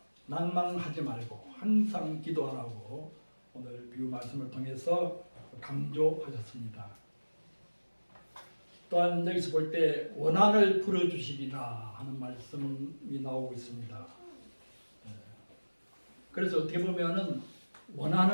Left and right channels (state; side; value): inverted; both; correlation -1.00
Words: 낭만하지 말고 항상 기도하라고 오늘 비유 말씀을 통해서 강조하셨습니다. 또한 여기서 볼 때 원한을 풀어주시리라 하는 말씀이 나오고 있습니다. 그래서 어떻게 보면은